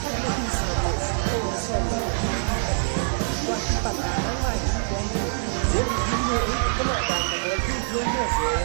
huy sự tôi sẽ quan tâm đến mai diễn viên người có một bạn là người thi thương của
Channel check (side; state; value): left; silent; digital silence